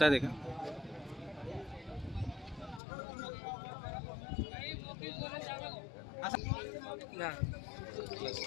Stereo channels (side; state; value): right; drops out; at 2.8 s